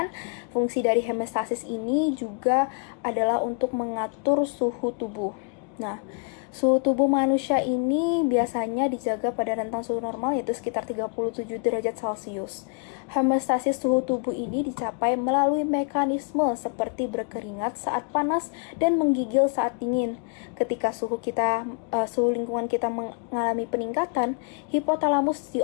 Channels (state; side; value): quieter; right; 39.1 dB